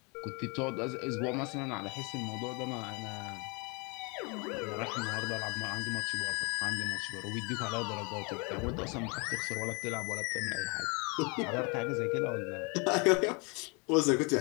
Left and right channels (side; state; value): right; quieter; 31.0 dB